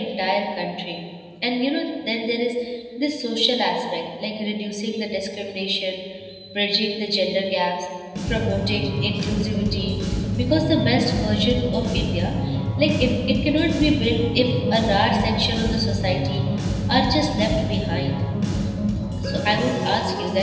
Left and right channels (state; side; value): identical; both; correlation 1.00